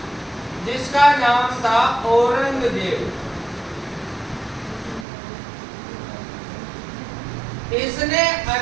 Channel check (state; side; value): drops out; left; at 5.1 s